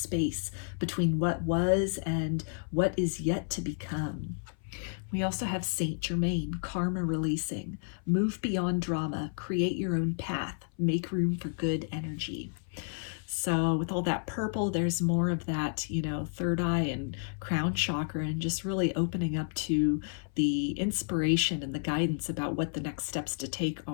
between what was and what is yet to become. We also have Saint Germain, karma releasing, move beyond drama, create your own path, make room for good energy. So with all that purple, there's more of that, third eye and crown chakra, and just really opening up to the inspiration and the guidance about what the next steps to take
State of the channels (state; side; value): silent; right; 57 dB below the other